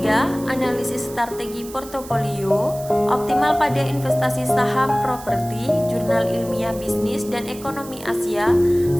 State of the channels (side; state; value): right; noise; hiss, 17 dB below the sound